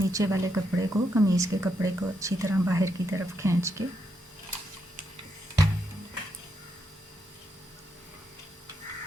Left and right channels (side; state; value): both; normal; correlation 0.80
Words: वाले कपड़े को, कमीज़ के कपड़े को अच्छी तरह बाहर की तरफ खींच के।